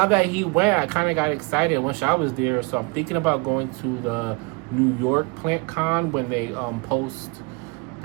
that he went, I kind of got excited. Once I was there, so I'm thinking about going to the New York Plant Con when they post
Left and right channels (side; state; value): left; quieter; 29.1 dB